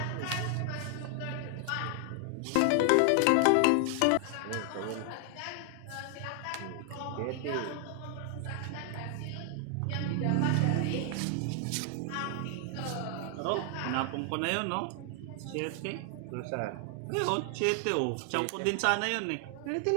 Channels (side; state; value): both; different; correlation 0.00